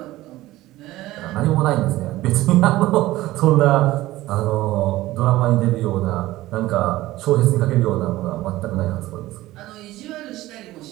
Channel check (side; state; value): left; quieter; 16.9 dB